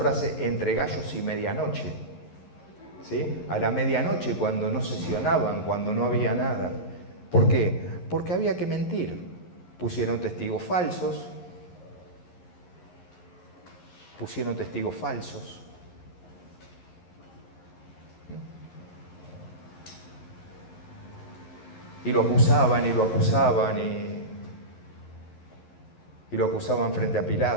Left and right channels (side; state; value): right; late; 11 ms